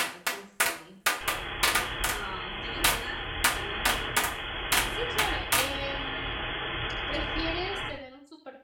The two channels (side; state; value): both; identical; correlation 1.00